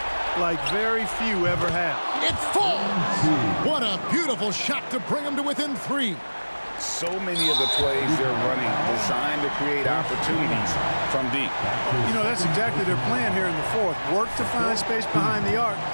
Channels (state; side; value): inverted; both; correlation -1.00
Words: like very few ever have. It falls! What a beautiful shot to bring him to within 3. So many of the plays they're running designed to create opportunities from deep. You know, that's exactly their plan here in the 4th. Work to find space behind the arc